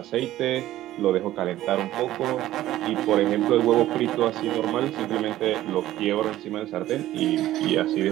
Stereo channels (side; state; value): left; quieter; 14.3 dB